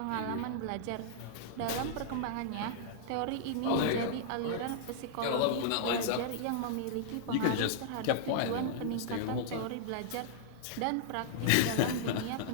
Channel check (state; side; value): different; both; correlation -0.02